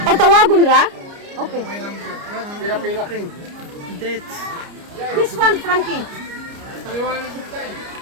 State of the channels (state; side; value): late; left; 29 ms